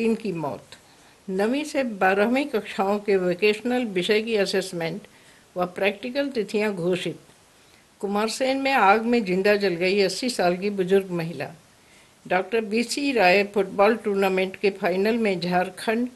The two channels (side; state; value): both; identical; correlation 1.00